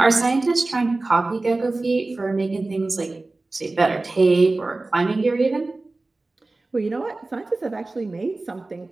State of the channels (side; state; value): left; quieter; 3.2 dB